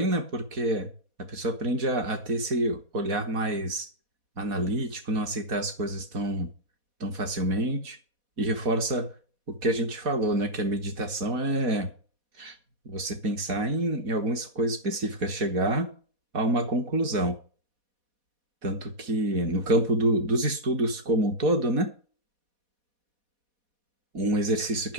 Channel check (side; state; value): left; late; 4.1 ms